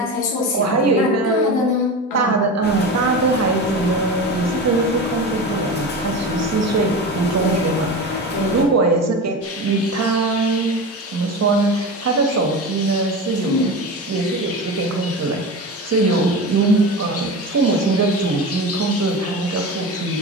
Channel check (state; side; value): normal; both; correlation 0.27